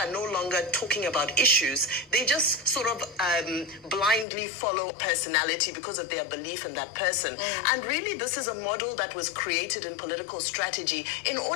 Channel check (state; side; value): drops out; right; at 4.2 s